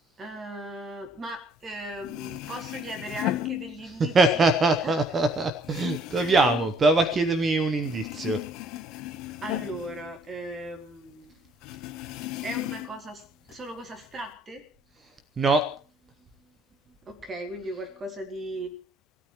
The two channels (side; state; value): both; normal; correlation 0.62